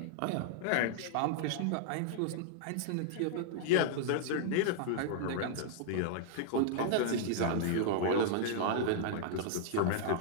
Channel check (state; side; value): different; both; correlation -0.01